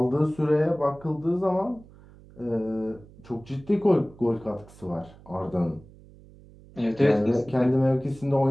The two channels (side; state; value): right; noise; hum, 23 dB below the sound